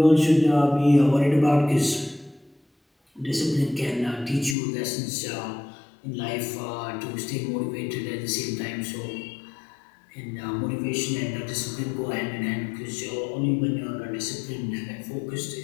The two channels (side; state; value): right; drops out; at 4.5 s